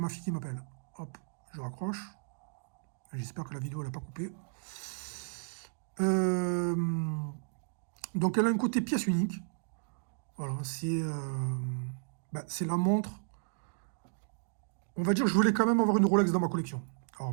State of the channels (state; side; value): silent; left; digital silence